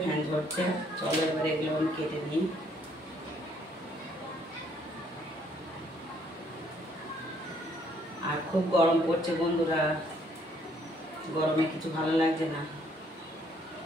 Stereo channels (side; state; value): both; normal; correlation 0.66